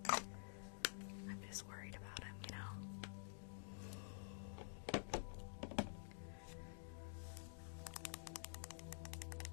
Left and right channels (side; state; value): right; silent; digital silence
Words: I'm just worried about him, you know?